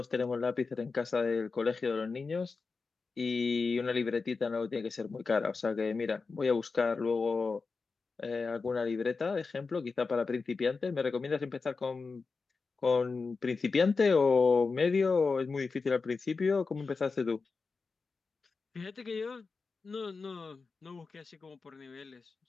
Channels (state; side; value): quieter; right; 4.5 dB